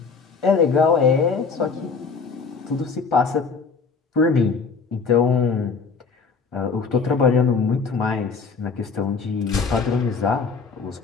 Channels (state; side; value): quieter; right; 5.0 dB